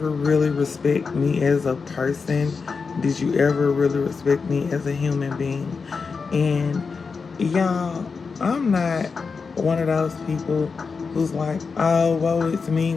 really respect me as a person? Did you ever really respect me as a human being? And y'all, I'm not one of those people who's like, oh, woe is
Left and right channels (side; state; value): right; quieter; 5.0 dB